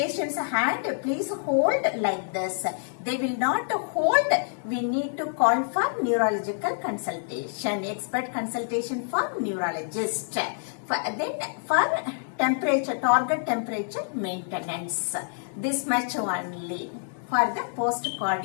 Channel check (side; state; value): right; silent; digital silence